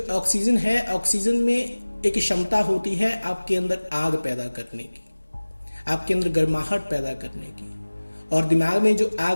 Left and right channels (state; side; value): inverted; both; correlation -1.00